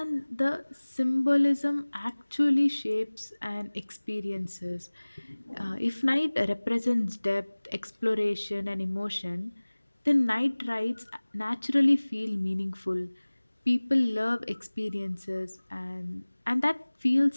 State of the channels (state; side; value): inverted; both; correlation -1.00